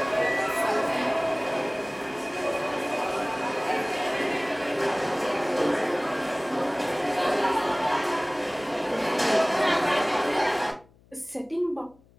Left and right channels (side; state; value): left; noise; hum, 29 dB below the sound